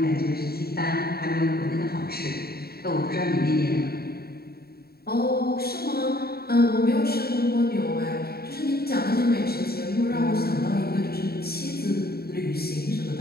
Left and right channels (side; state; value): right; late; 0.45 ms